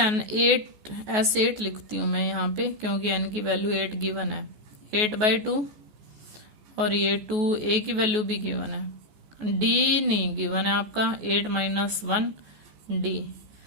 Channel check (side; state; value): left; late; 14 ms